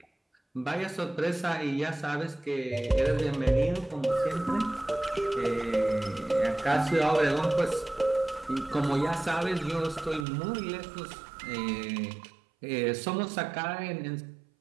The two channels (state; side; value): drops out; left; at 10.2 s